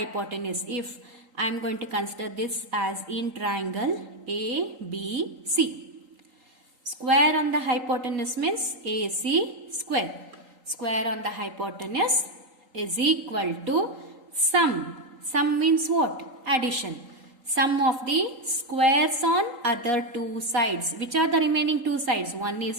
If I am going to consider this as in triangle ABC. Square on the hypotenuse means AC square. Square on the hypotenuse is equal to sum. Sum means what? Addition. Sum of the squares on other two sides. Which are the remaining two sides? One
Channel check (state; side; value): late; left; 3.8 ms